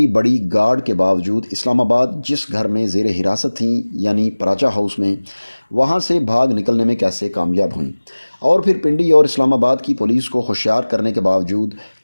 بڑی گارڈ کے باوجود اسلام آباد جس گھر میں زیر حراست تھیں یعنی پراچا ہاؤس میں، وہاں سے بھاگ نکلنے میں کیسے کامیاب ہوئیں، اور پھر پنڈی اور اسلام آباد کی پولیس کو ہوشیار کرنے کے باوجود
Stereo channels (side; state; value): both; inverted; correlation -1.00